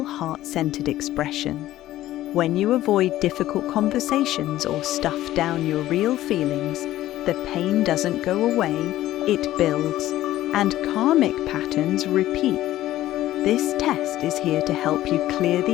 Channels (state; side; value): quieter; right; 14.5 dB